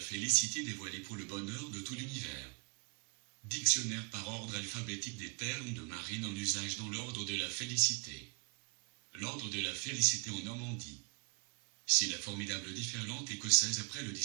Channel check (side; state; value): left; quieter; 34.2 dB